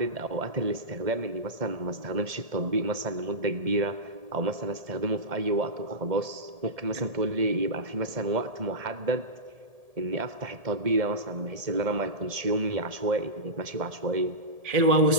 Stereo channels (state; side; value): late; left; 1.7 ms